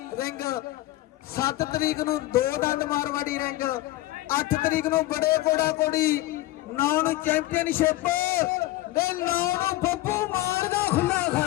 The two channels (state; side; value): quieter; right; 17.1 dB